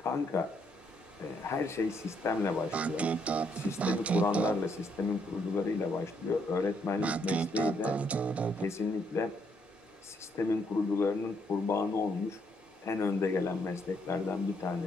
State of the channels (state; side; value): normal; both; correlation 0.73